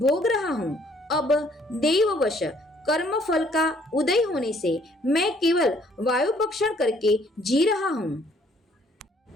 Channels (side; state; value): both; normal; correlation 0.63